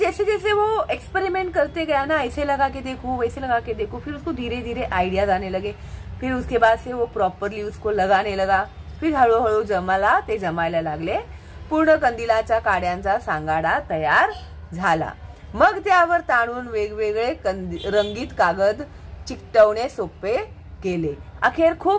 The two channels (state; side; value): identical; both; correlation 1.00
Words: जैसे वो एक्सपेरिमेंट करते गया ना, ऐसे लगा के देखो, वैसे लगा के देखो, फिर उसको धीरे धीरे आइडियाज आने लगे। फिर उसके बाद से वो प्रॉपरली उसको लगाने लगा। फिर हळूहळू जमायला लागले। पूर्ण कंदिलाच्या काड्यांचा सांगाडा तयार झाला। मग त्यावर ताणून वेगवेगळे रंगीत कागद चिकटवणे सोपे केले। अखेर